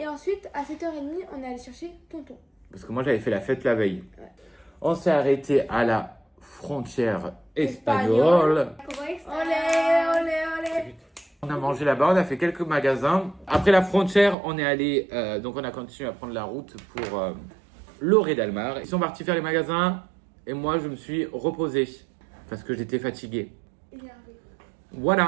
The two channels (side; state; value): left; drops out; at 14.4 s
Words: ensuite, à 7h30, on est allé chercher tonton. Parce que moi, j'avais fait la fête la veille. Ouais. On s'est arrêté à la frontière espagnole. Olé, olé, olé. On a mangé là-bas, on a fait quelques magasins. Après la frontière, on est allé, donc on a continué à prendre la route pour Lloret d'Almar. Ils sont partis faire les magasins et moi, je me suis reposé parce que j'étais fatigué.